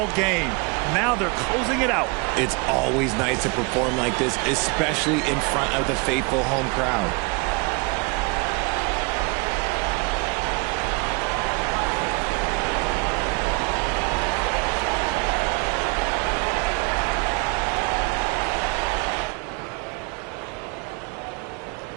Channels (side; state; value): left; quieter; 29.3 dB